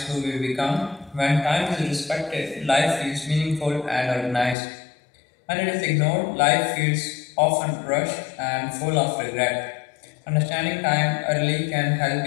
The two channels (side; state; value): right; drops out; at 4.5 s